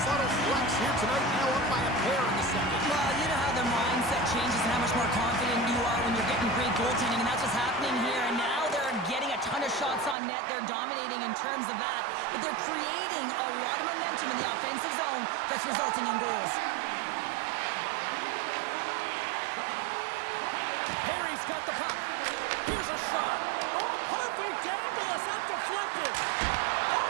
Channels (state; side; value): drops out; left; at 10.2 s